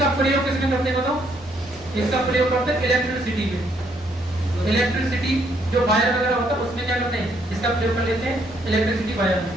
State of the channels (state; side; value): normal; both; correlation 0.70